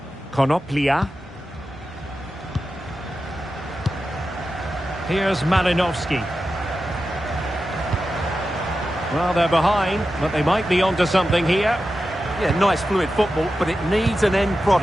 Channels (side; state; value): both; normal; correlation 0.92